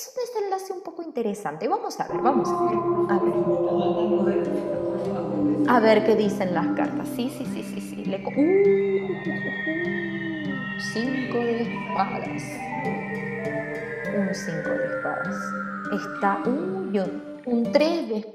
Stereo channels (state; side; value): identical; both; correlation 1.00